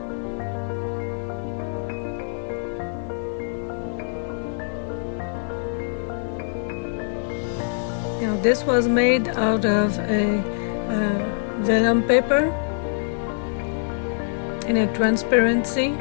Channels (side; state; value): right; silent; 57 dB below the other